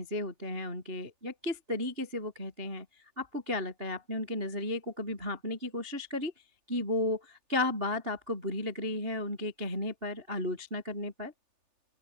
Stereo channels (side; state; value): left; late; 3.4 ms